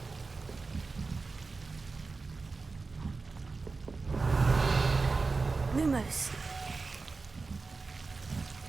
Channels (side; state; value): left; quieter; 4.1 dB